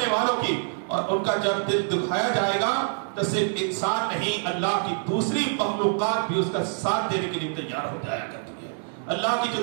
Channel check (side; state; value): left; silent; 61 dB below the other